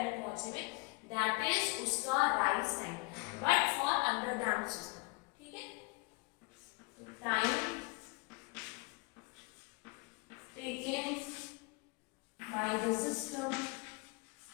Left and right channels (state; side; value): quieter; right; 28.0 dB